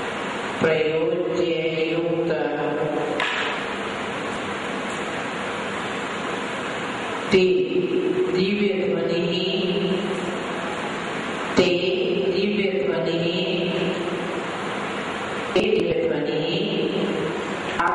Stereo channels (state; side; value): identical; both; correlation 1.00